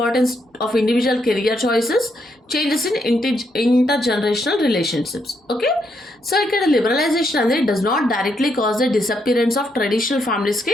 of individual career choices, changes in intergenerational relationships. Okay, so ఇక్కడ liberalization అనేది does not directly cause the disappearance of traditional ఫ్యామిలీస్కి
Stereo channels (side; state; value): both; normal; correlation 0.77